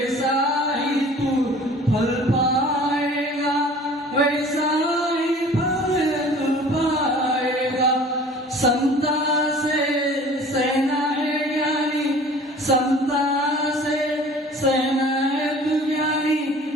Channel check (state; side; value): normal; both; correlation 0.46